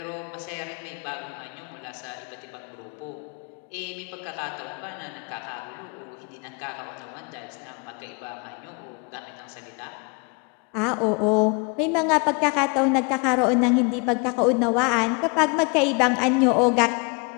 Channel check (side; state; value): right; quieter; 32.5 dB